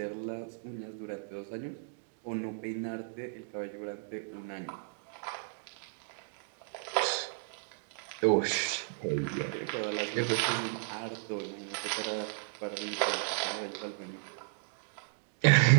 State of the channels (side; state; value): left; silent; digital silence